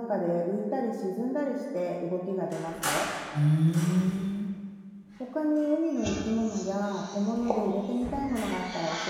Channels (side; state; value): both; identical; correlation 1.00